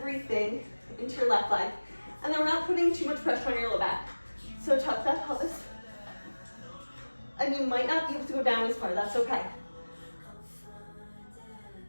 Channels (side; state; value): both; inverted; correlation -1.00